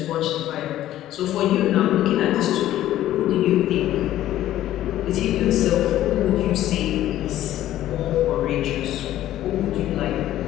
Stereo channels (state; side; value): quieter; right; 13.4 dB